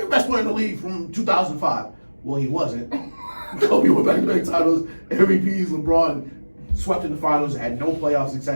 the best player in the league from 2005. Well, he wasn't. Kobe went back-to-back titles, MVPs, LeBron swept in the finals, had no playoff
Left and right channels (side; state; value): both; inverted; correlation -1.00